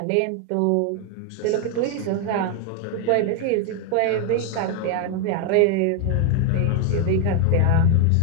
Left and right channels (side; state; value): both; different; correlation 0.01